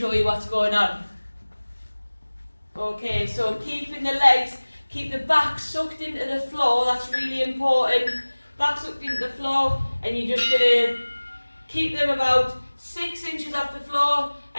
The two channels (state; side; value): inverted; both; correlation -1.00